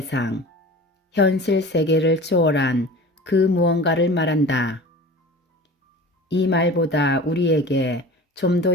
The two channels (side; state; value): both; normal; correlation 0.38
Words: 현실 세계를 초월한 그 무언가를 말한다. 이 말보다 우리에게 좀 더